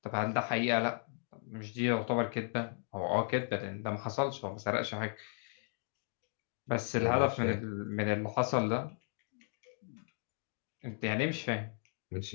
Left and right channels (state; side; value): silent; right; 54 dB below the other